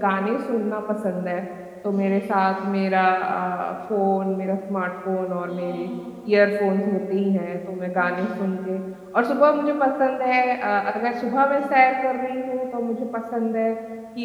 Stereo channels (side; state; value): both; identical; correlation 1.00